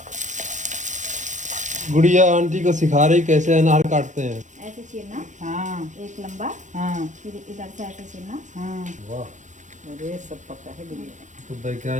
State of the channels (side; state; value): left; late; 0.35 ms